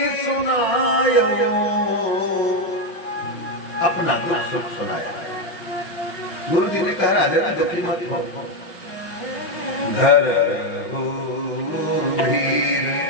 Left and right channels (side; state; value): right; late; 5.5 ms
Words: सुनायो, अपना दुख सुख सुनाया। गुरु जी ने कहा राजा ना दुखी मत हो, घर हो धीर,